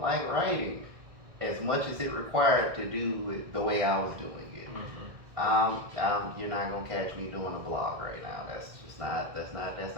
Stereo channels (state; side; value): late; left; 1.6 ms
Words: like writing as much as it required to do it the way I was doing it. You're not gonna catch me doing a blog right now. That's